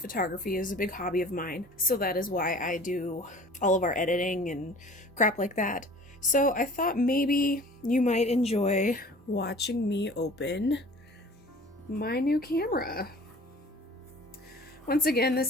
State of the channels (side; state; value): both; normal; correlation 0.46